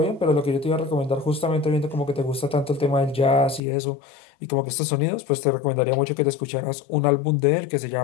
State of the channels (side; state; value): right; drops out; at 3.6 s